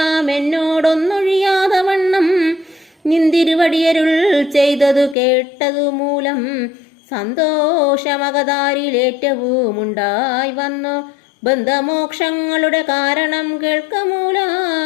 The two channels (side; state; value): right; drops out; at 5.2 s